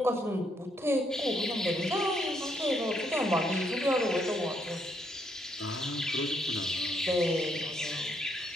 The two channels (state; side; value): normal; both; correlation 0.74